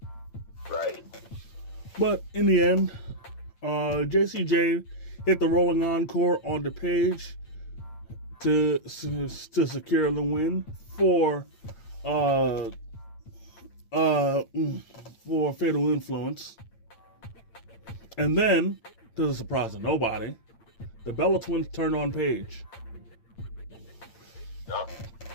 Right. But in the end, JCJ hit the rolling encore on the Paige to secure the win for Fatal Influence. And then, to the surprise of nobody, the Bella Twins turned on Paige. Yep.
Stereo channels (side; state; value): right; late; 8.8 ms